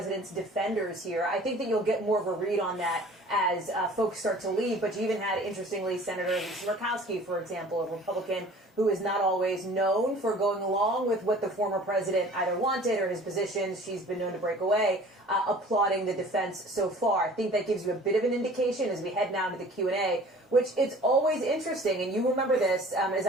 defenders here. I think that you'll get more of a read on that as folks start to leave, but you even had, interestingly, Senator Murkowski, for example, a Republican who is not always known for going along with what the former president either wanted or his positions. She's been known to break away, applauding the defense so far. I think that gives you a bit of an indication as we head now to the Q&A, which it's always interesting, and you remember this, as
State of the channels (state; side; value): normal; both; correlation 0.47